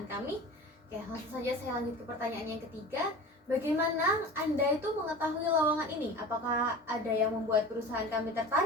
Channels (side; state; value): both; normal; correlation 0.35